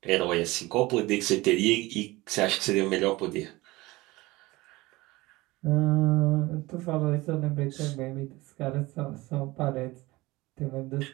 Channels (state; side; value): quieter; left; 20.6 dB